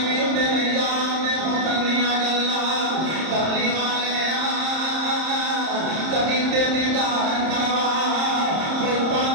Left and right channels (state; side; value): late; left; 30 ms